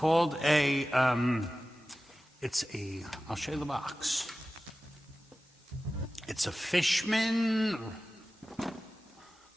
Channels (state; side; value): normal; both; correlation 0.95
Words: I'll show you the box. It's a Fishman.